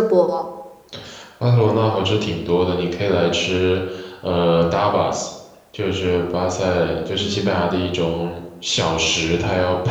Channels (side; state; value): both; identical; correlation 1.00